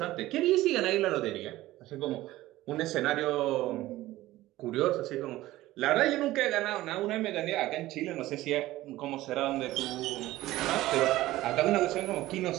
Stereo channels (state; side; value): quieter; left; 16.5 dB